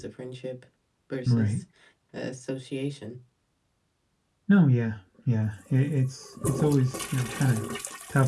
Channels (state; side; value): identical; both; correlation 1.00